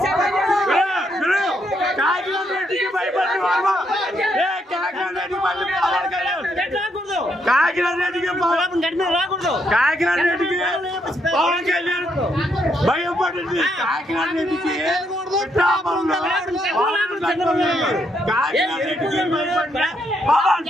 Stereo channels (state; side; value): normal; both; correlation 0.76